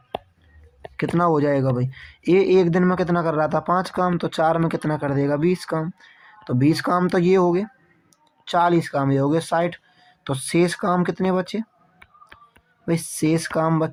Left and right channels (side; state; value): both; identical; correlation 1.00